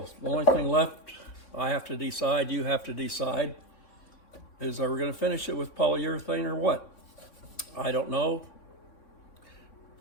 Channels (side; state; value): right; late; 3.6 ms